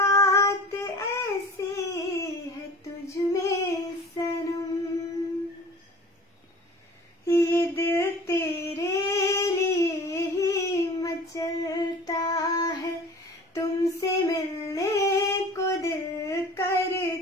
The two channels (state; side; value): normal; both; correlation 0.43